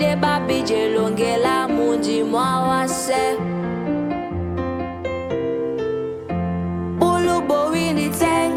babi jelongela munji mwawase Ulubo wini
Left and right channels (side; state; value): both; identical; correlation 1.00